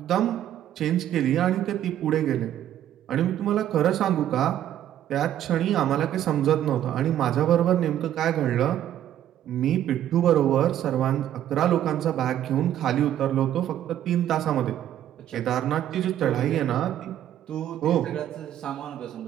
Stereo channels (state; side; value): quieter; left; 11.5 dB